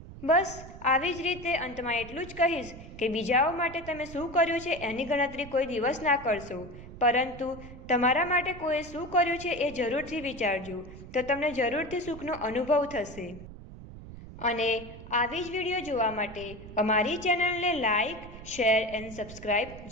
બસ આવી જ રીતે અંતમાં એટલું જ કહીશ કે બીજાઓ માટે તમે શું કર્યું છે એની ગણતરી કોઈ દિવસ ના કરશો, પરંતુ તમારા માટે કોઈએ શું કર્યું છે એ જરૂરથી વિચારજો, તો તમને જરૂરથી સુખનો અનુભવ થશે। અને આવી જ વિડીયો જોવા માટે અમારી ચેનલને લાઈક, શેર એન્ડ સબસ્ક્રાઈબ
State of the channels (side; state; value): right; noise; rumble, 14 dB below the sound